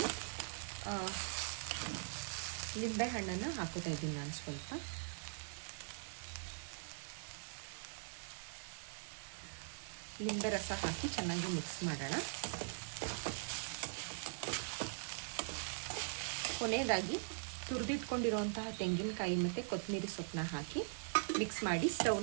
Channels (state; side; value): silent; left; digital silence